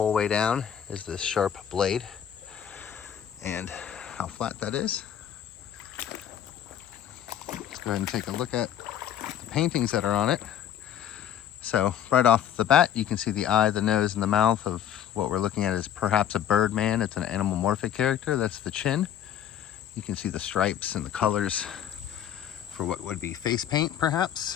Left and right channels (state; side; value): quieter; right; 10.1 dB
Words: way down, is this sharp blade, and how flat that is. Let's go ahead and take a look at the paintings that are on it. So right off the bat, you can see the eye, the nose, and the mouth of what we're looking at is perhaps a bird man. It's an animalmorphic character. That's the chin. You can see the stripes and the colors for what would be face paint, perhaps.